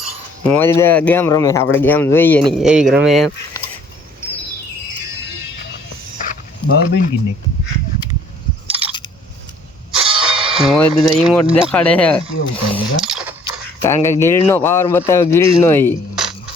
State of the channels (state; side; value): normal; both; correlation 0.58